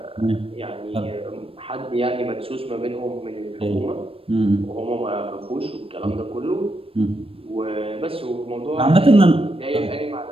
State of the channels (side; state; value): left; late; 0.27 ms